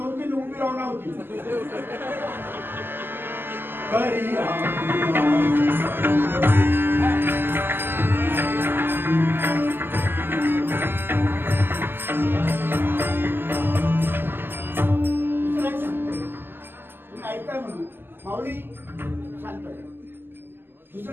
उभी राहणार होती. ऐकताय म्हणून माऊली शांत.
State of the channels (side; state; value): left; late; 0.098 ms